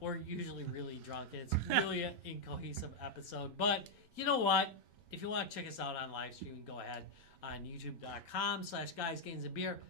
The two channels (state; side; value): normal; both; correlation -0.01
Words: usually really drunk. And it's really an incohesive episode. But you know what? If you want to check us out on live streaming, go ahead on youtube.com/guysgamesandbeer.